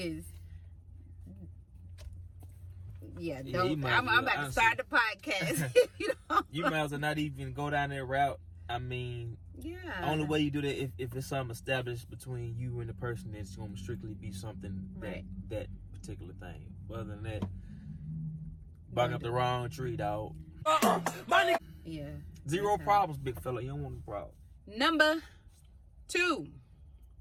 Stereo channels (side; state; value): both; identical; correlation 1.00